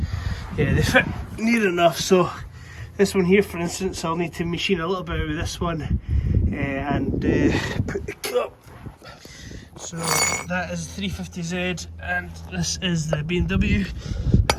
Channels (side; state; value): both; identical; correlation 1.00